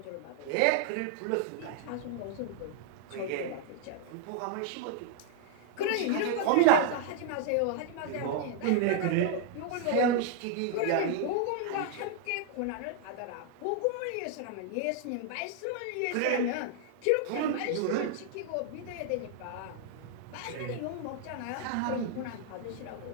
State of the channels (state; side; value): different; both; correlation 0.00